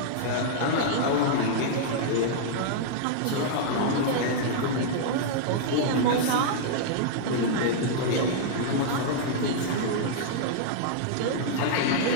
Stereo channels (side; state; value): both; different; correlation -0.01